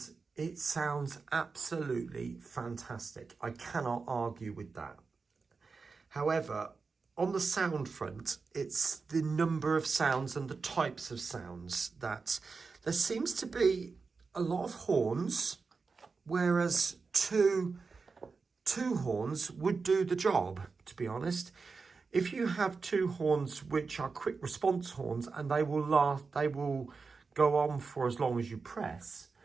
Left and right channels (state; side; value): quieter; left; 4.6 dB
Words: it sounds absolutely fantastic. I cannot argue with that. However, on the sound front, it's the number of sounds and the types of sounds that there seems to be a lot of horns, whereas two horns would do the job, to be honest. If you have two horns which are quick response horns and they will go on for as long as you press,